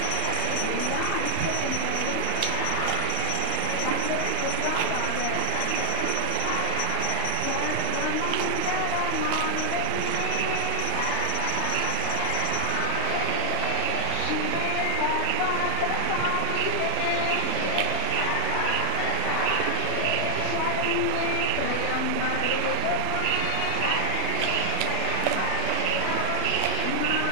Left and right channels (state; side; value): different; both; correlation 0.00